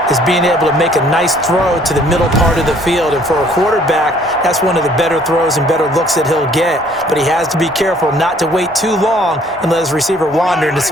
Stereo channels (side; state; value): both; normal; correlation 0.59